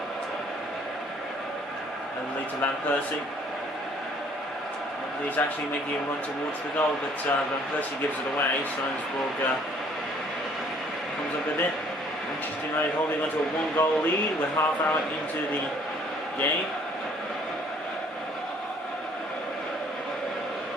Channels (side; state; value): both; normal; correlation 0.59